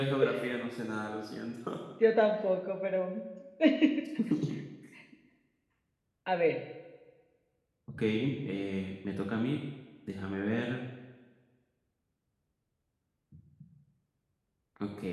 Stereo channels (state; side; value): identical; both; correlation 1.00